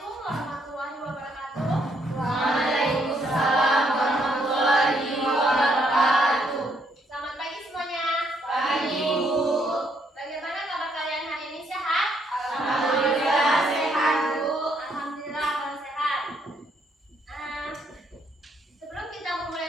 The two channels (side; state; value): both; normal; correlation 0.72